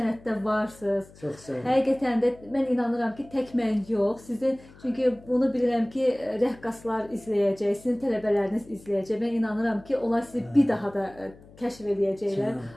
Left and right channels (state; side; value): noise; left; hum, 23 dB below the sound